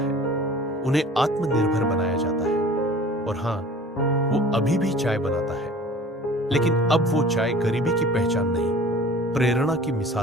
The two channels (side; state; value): both; normal; correlation 0.45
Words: उन्हें आत्मनिर्भर बनाया जाता है। और हां, वो अभी भी चाय बनाता है, लेकिन अब वो चाय गरीबी की पहचान नहीं, प्रेरणा की